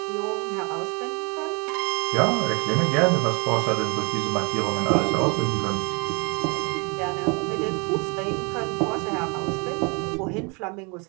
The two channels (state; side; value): quieter; left; 31.6 dB